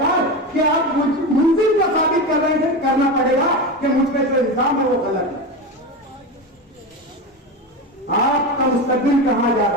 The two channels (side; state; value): both; normal; correlation 0.21